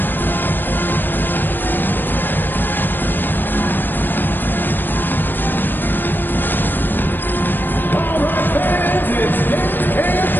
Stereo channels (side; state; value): right; late; 0.094 ms